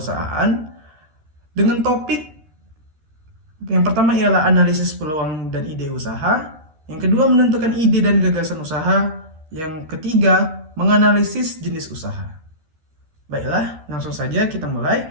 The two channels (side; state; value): left; late; 13 ms